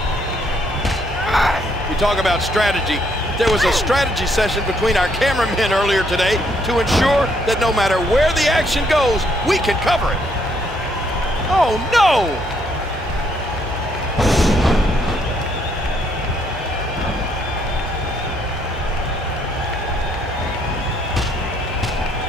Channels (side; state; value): both; normal; correlation 0.70